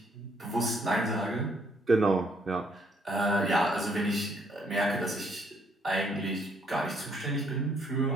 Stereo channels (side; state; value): both; normal; correlation 0.69